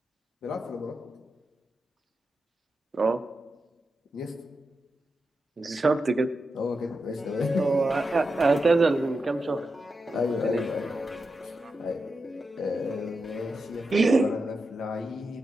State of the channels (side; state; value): both; normal; correlation 0.89